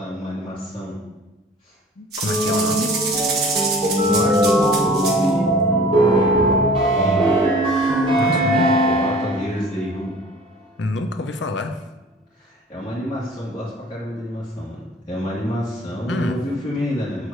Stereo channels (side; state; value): both; normal; correlation 0.47